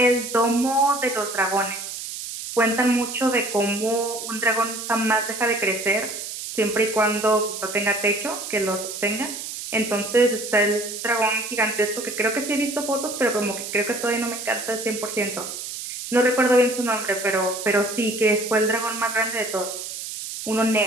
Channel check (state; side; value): noise; right; hiss, 8 dB below the sound